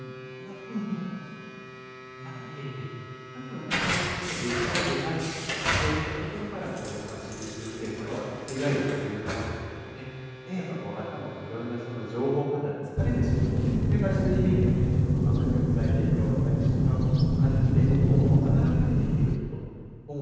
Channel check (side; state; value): both; identical; correlation 1.00